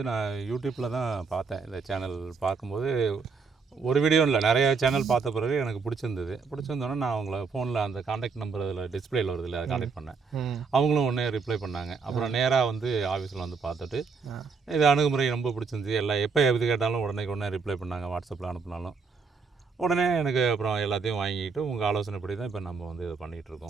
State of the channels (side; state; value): left; quieter; 5.0 dB